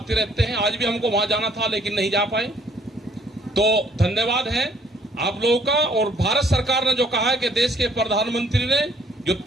रहते हैं। आज भी हमको वहां जाना था लेकिन नहीं जा पाए। तो धन्यवाद है आप लोगों का। और भारत सरकार ने जो कहा है कि देश के प्रधानमंत्री ने जो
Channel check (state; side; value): normal; both; correlation 0.62